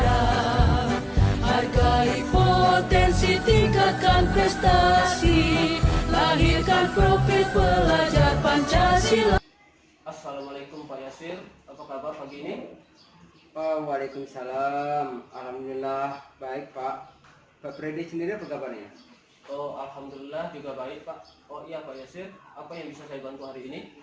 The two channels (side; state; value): both; identical; correlation 1.00